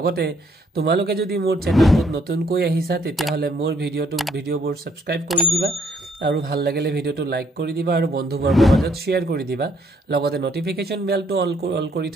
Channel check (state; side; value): normal; both; correlation 0.67